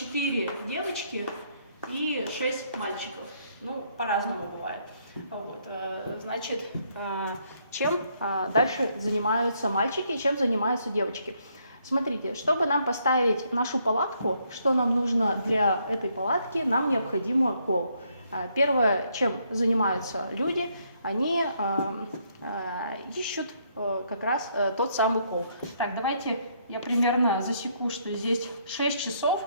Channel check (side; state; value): both; inverted; correlation -0.72